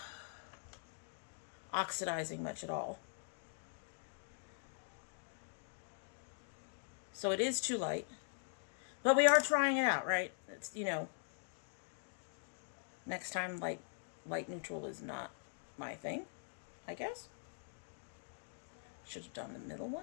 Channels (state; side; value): silent; right; digital silence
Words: oxidizing much at all. So it is too light. But we are trying it out, right? It's, you know, next time light neutral is not my thing, I guess. Should have done the middle